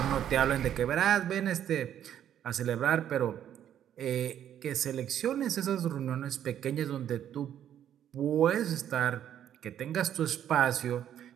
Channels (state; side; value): quieter; left; 10.3 dB